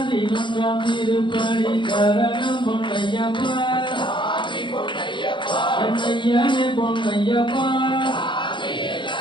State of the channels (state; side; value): late; right; 0.24 ms